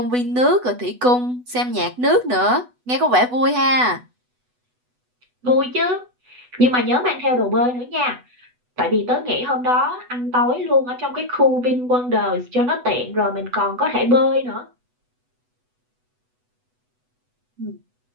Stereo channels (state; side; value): late; left; 8.1 ms